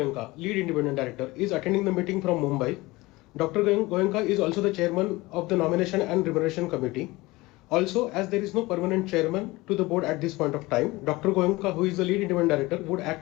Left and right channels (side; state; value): right; quieter; 21.1 dB